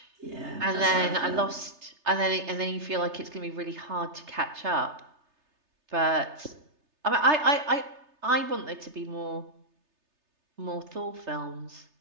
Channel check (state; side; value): late; left; 3.3 ms